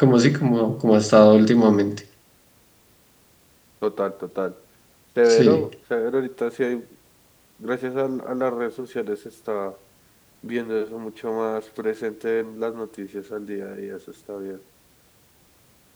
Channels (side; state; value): both; identical; correlation 1.00